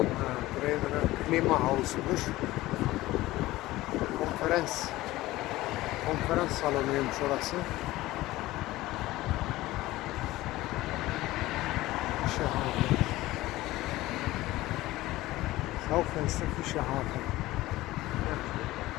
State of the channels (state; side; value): quieter; right; 17.6 dB